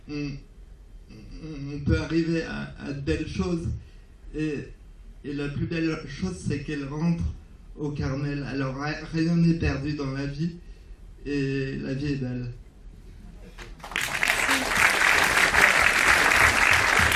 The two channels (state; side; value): identical; both; correlation 1.00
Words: on peut arriver à de belles choses. Et la plus belle chose, c'est qu'elle rentre au Carmel. Alors rien n'est perdu dans la vie et la vie est belle.